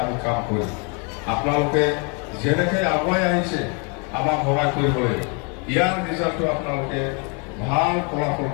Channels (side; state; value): right; quieter; 35.1 dB